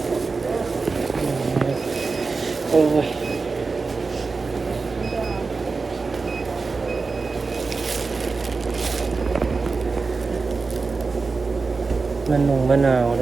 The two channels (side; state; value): left; quieter; 4.3 dB